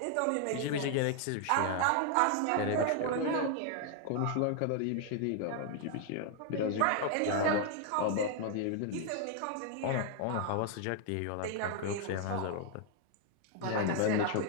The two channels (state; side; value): different; both; correlation 0.00